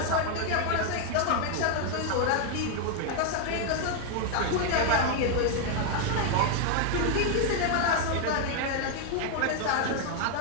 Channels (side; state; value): both; different; correlation 0.00